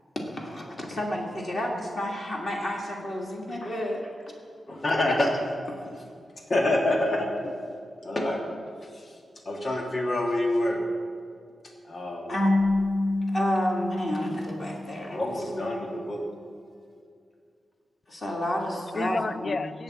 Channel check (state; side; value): normal; both; correlation 0.90